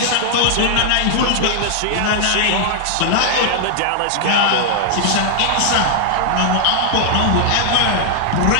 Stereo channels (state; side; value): different; both; correlation -0.01